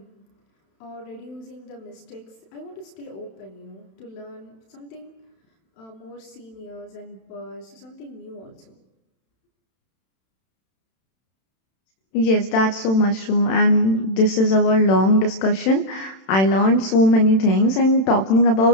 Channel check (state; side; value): late; right; 31 ms